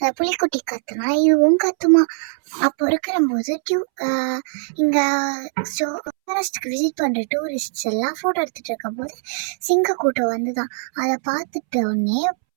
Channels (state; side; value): silent; left; 65 dB below the other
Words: புலிக்குட்டி கத்துனா இதுவும் கத்துமா. அப்போ இருக்கிற போது இங்க ஃபாரஸ்ட்டுக்கு விசிட் பண்ற டூரிஸ்ட் எல்லாம் போட்டோ எடுத்துட்டு இருக்கும் போது சிங்க கூட்டம் வந்துதான். அதை பார்த்துட்டு உடனே